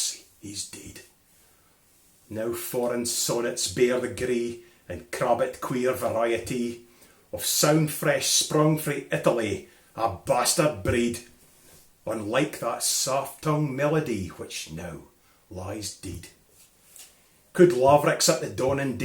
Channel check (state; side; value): identical; both; correlation 1.00